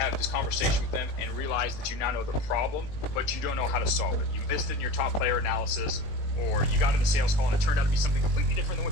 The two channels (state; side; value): late; right; 20 ms